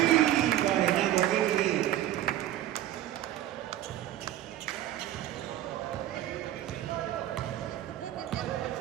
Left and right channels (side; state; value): left; quieter; 13.0 dB